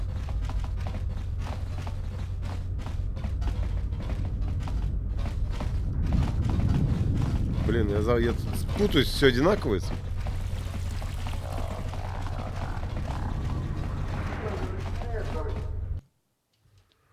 Блин, я тут путаюсь, все одинаковое.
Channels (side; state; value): both; identical; correlation 1.00